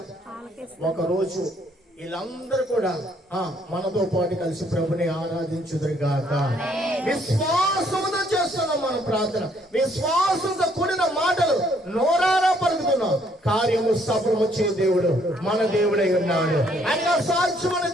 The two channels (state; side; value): normal; both; correlation 0.66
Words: ఒకరోజు వీళ్ళందరూ కూడా మనతో పాటు కలిసి ప్రభుని ఆరాధించుదురుగాక. విశ్వాసంతో చేస్తున్నాం మనం ప్రార్థన. విశ్వాసంతో కూడిన మాటలు నోరారా పలుకుతున్నాం. కార్యము సఫలము చే దేవుడు మన దేవుడై ఉన్నాడు. ఆయనగా సాక్ష్యం